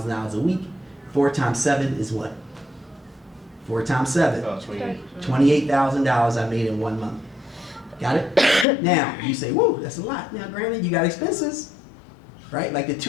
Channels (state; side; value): drops out; right; at 8.7 s